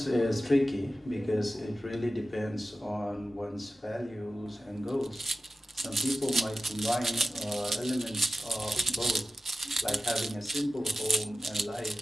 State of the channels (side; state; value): both; normal; correlation 0.95